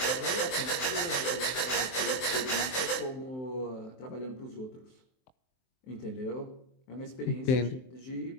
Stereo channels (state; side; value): late; right; 23 ms